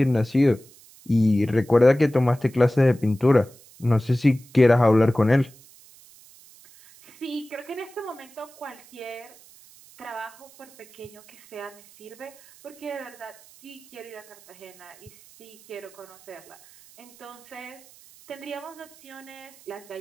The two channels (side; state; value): right; noise; hiss, 24 dB below the sound